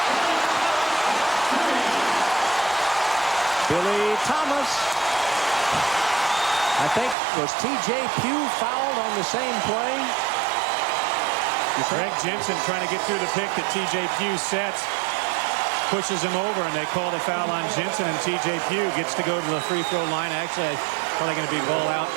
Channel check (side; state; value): left; drops out; at 7.2 s